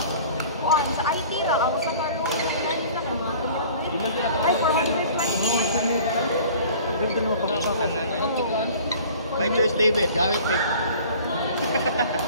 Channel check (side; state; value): both; inverted; correlation -0.47